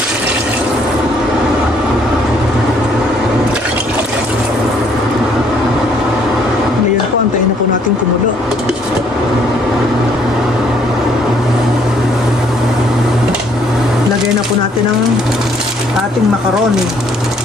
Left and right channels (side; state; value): both; normal; correlation 0.65